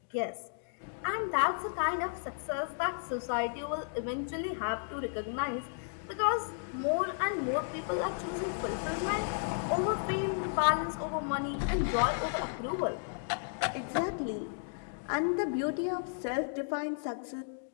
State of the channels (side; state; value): right; silent; digital silence